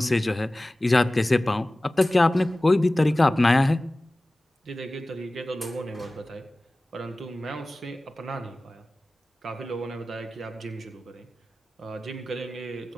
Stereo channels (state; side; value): normal; both; correlation 0.97